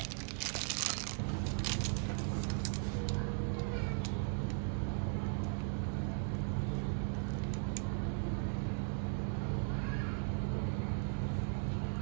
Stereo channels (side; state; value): left; silent; 53 dB below the other